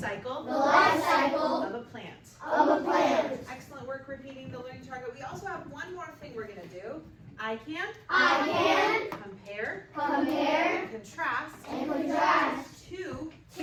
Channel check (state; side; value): identical; both; correlation 1.00